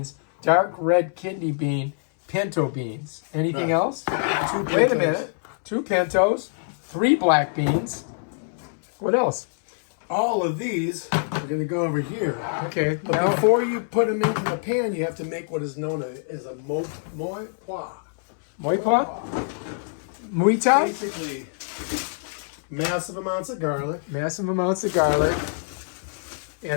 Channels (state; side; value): silent; right; 60 dB below the other